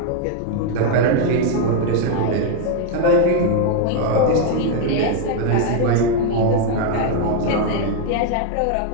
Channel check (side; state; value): both; different; correlation 0.00